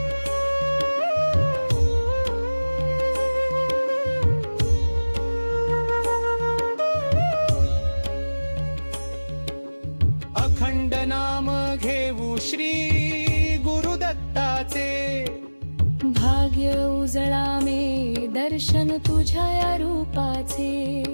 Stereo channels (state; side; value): inverted; both; correlation -1.00